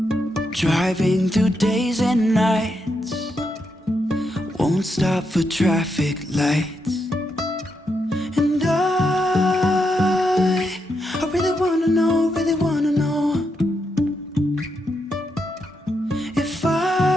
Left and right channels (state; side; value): normal; both; correlation 0.82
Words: Driving through days and nights, won't stop for traffic lights. And I really wanna know, if